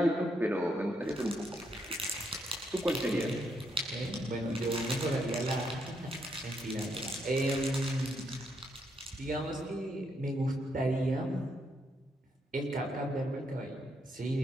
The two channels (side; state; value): both; normal; correlation 0.77